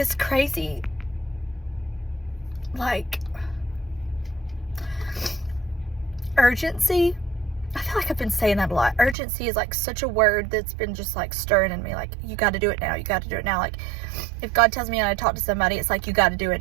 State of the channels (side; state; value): left; drops out; at 9.2 s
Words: crazy, like, urgency. I feel like I've been saying that a lot. Urgency is like such a word that's been just like stirring in me. Like, you got to do it now. You got to do it now. Like, if God tells me I talk to somebody, it's like, you got to do it